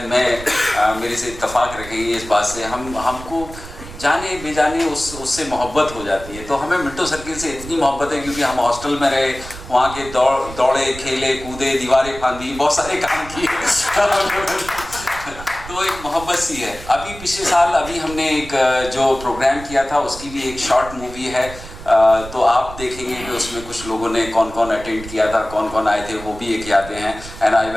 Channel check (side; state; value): right; noise; rumble, 14 dB below the sound